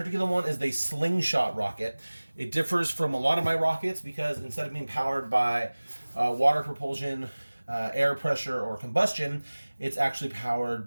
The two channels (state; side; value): inverted; both; correlation -1.00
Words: one is the slingshot rocket. It differs from a lot of my rockets because instead of being powered by water propulsion, air pressure, or combustion, it's actually powered